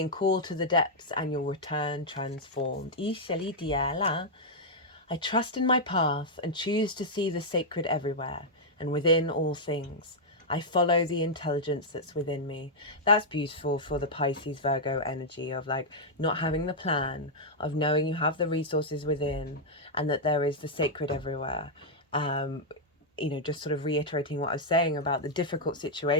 called to the depths and you'll return transformed. I trust in my path and choose to see the sacred everywhere and within all things. I follow the intelligence that's within me. That's beautiful for the Pisces Virgo energy of like not having the plan, of knowing you have the resources within and that there is the sacred everywhere. Just sort of reiterating what I was saying about the difficult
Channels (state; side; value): normal; both; correlation -0.05